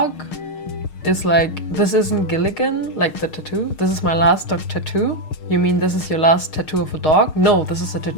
is like, this isn't Gilligan, like the tattoo. This is my last dog tattoo. You mean this is your last tattoo of a dog? No, this is a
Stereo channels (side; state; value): right; late; 6.5 ms